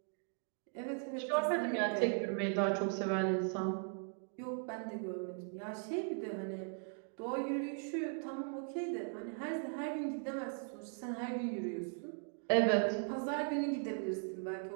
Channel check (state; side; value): silent; left; 52 dB below the other